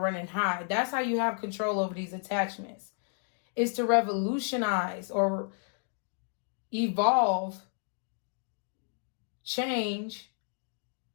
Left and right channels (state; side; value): silent; right; 57 dB below the other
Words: high. That's how you have control over these attachments. is to revolutionize or evolve, change,